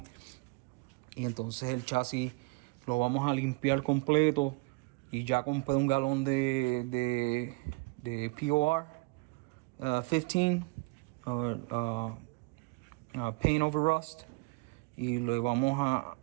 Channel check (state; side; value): quieter; left; 28.8 dB